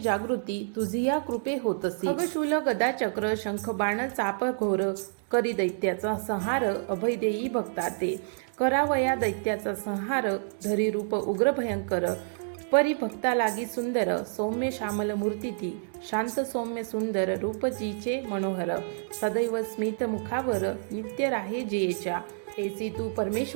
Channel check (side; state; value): left; silent; digital silence